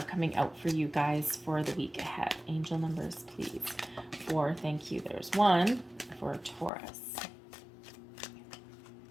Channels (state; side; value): drops out; right; at 6.7 s